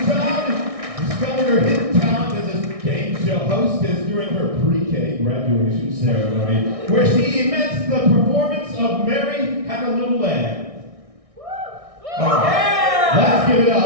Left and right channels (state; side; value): late; left; 1.6 ms